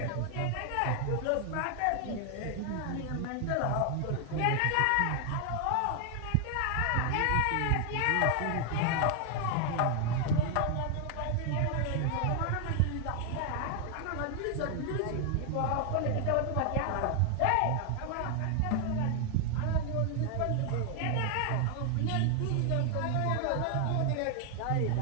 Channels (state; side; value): different; both; correlation 0.00